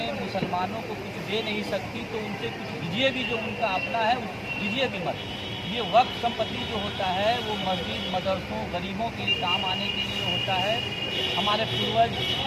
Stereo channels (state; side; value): identical; both; correlation 1.00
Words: मुसलमानों को कुछ दे नहीं सकती तो उनसे कुछ दीजिए भी, जो उनका अपना है दीजिए भी मत। ये वक्त संपत्ति जो होता है वो मस्जिद, मदरसों, गरीबों के लिए काम आने के लिए होता है। हमारे पूर्वज